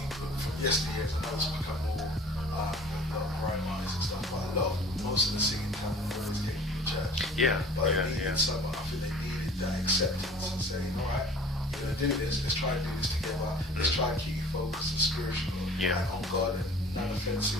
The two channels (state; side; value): normal; both; correlation 0.47